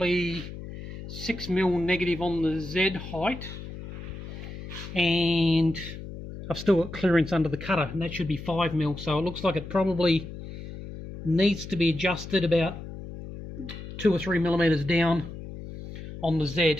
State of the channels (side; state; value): left; noise; hum, 11 dB below the sound